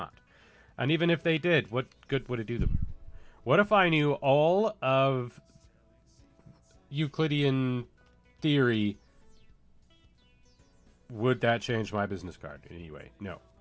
And even if they did, what good would it do them? What if I knew all of Euclidean theory? Would that change my business card in any way? No.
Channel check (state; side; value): identical; both; correlation 1.00